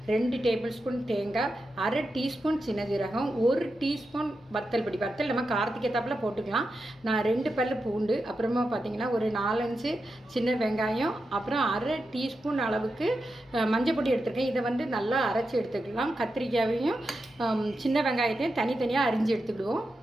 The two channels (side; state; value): both; normal; correlation 0.88